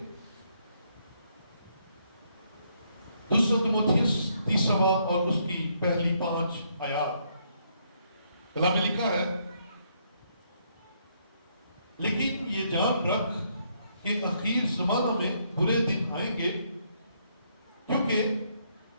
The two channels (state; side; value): inverted; both; correlation -0.72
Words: دوسرا تیموتھیوس تیسرا باب اور اس کی پہلی 5 آیات. کلام میں لکھا ہے، لیکن یہ جان رکھ کہ اخیر زمانہ میں برے دن آئیں گے، کیونکہ